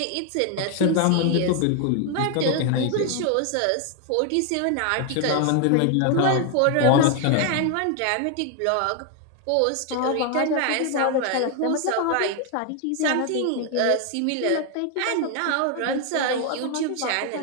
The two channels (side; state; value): both; different; correlation 0.01